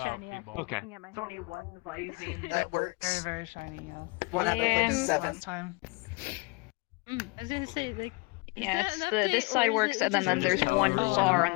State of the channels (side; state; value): right; quieter; 28.3 dB